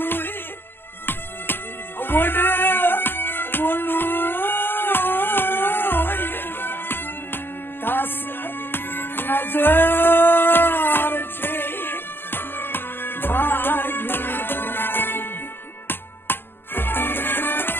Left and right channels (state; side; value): late; right; 0.10 ms